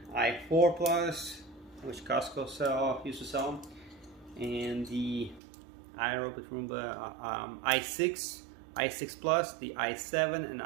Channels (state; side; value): drops out; left; at 5.4 s